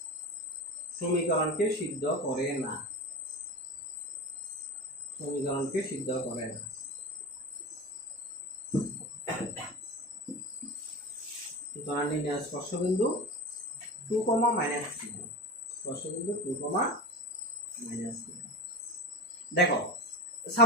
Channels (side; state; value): both; normal; correlation 0.27